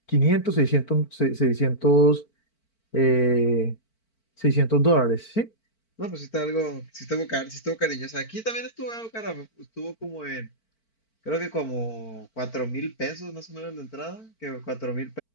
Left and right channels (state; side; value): late; right; 4.5 ms